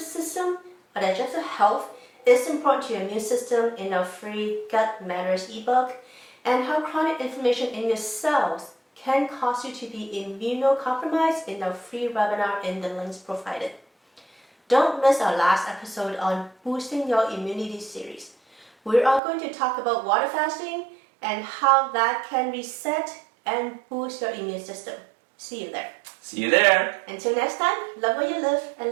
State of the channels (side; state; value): left; drops out; at 19.2 s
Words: health is important to your immune system in our free Gut Matters ebook, and how chronic inflammation in your cells can cause you to be immunocompromised in our free webinar in the links provided. Don't miss our last episode on boosting your immunity series. We are going to talk about water fasting and how that can reset and boost your immune system. See you there. See you there. Until next time, love what you live